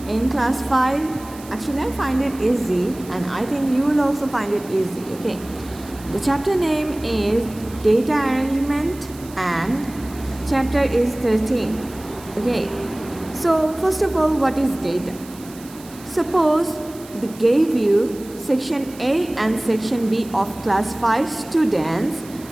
in class 5. Actually, I find it easy and I think you will also find it easy. Okay. The chapter name is Data Arrangement and chapter is 13. Okay. So first of all, what is data? Suppose they gave you section A and section B of class 5 students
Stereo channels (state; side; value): noise; right; hiss, 20 dB below the sound